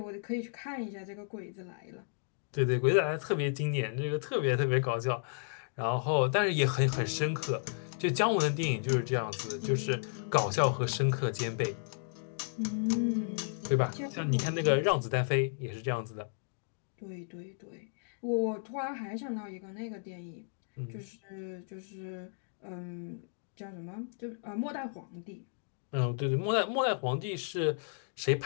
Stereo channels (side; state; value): right; silent; digital silence